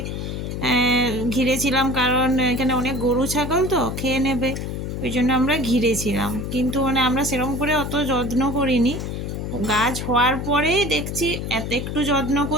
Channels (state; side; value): noise; left; hum, 5 dB below the sound